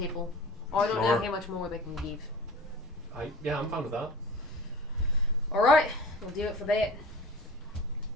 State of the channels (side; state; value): both; normal; correlation 0.39